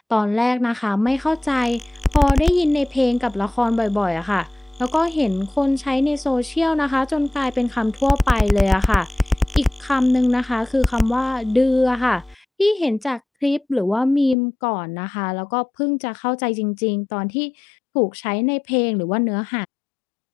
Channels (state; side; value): drops out; right; at 14.4 s